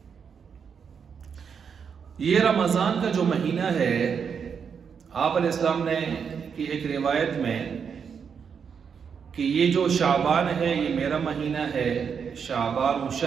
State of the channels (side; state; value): left; quieter; 6.7 dB